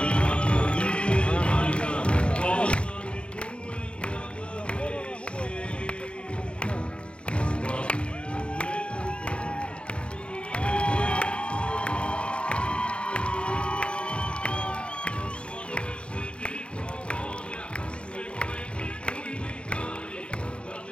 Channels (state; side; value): late; right; 0.056 ms